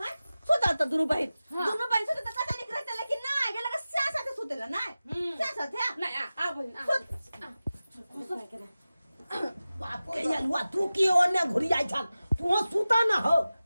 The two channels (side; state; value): both; inverted; correlation -0.95